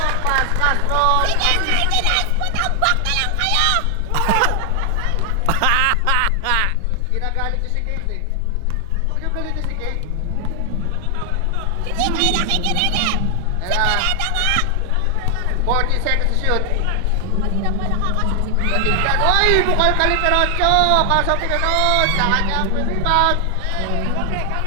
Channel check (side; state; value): both; different; correlation 0.00